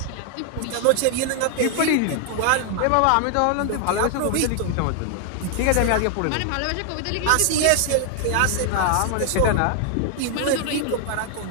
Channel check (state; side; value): different; both; correlation 0.00